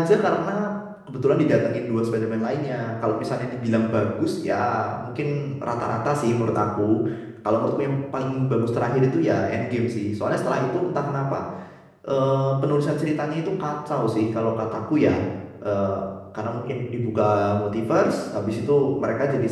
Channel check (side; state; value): both; identical; correlation 1.00